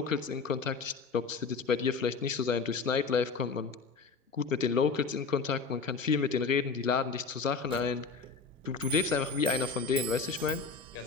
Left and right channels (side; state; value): right; quieter; 4.8 dB